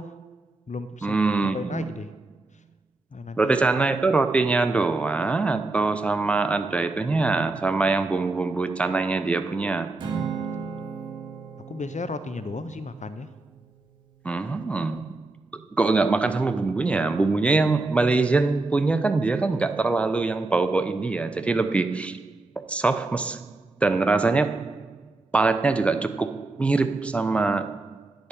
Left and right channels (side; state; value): left; quieter; 3.2 dB